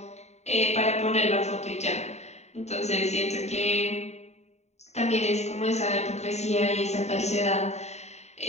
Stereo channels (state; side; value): late; right; 0.32 ms